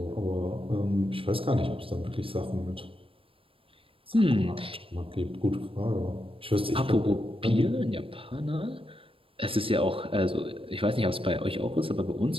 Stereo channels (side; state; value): left; late; 0.26 ms